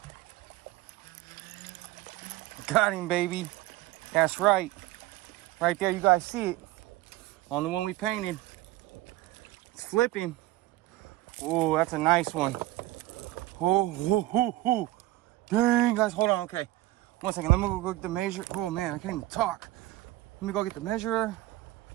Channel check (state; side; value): quieter; left; 17.1 dB